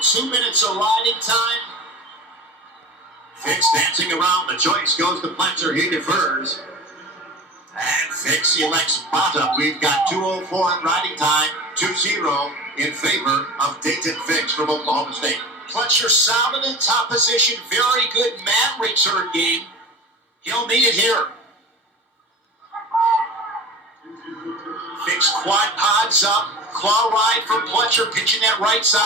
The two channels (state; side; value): normal; both; correlation 0.34